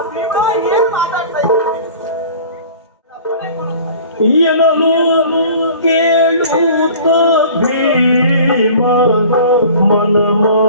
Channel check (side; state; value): both; inverted; correlation -0.45